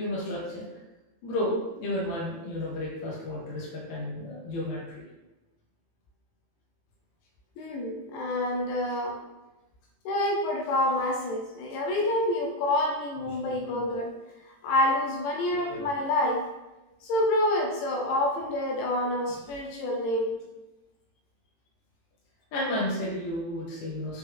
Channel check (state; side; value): late; right; 18 ms